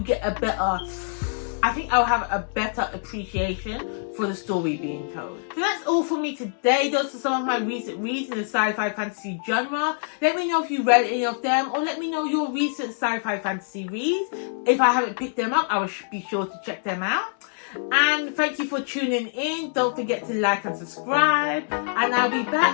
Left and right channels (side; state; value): right; silent; digital silence